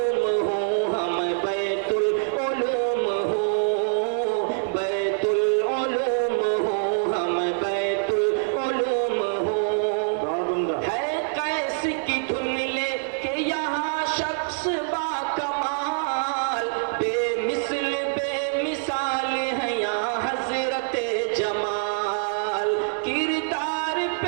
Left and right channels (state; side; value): silent; left; digital silence